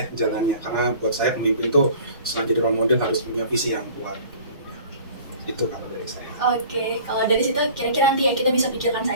jalannya. Karena buat saya pemimpin tuh selain jadi role model harus punya visi yang kuat. Itu kalau dari saya. Oke, kalau dari situ kira-kira nanti ya kita bisa pikirkan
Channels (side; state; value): both; inverted; correlation -0.46